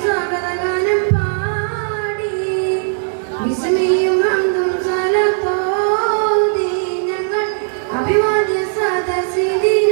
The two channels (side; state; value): left; silent; digital silence